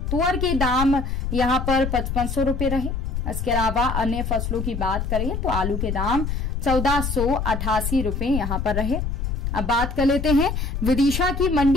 तुअर के दाम यहां पर 5500 रुपए रहे। इसके अलावा अन्य फसलों की बात करें तो आलू के दाम 1488 रुपए यहां पर रहे। अब बात कर लेते हैं विदिशा की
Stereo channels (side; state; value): left; noise; rumble, 3 dB below the sound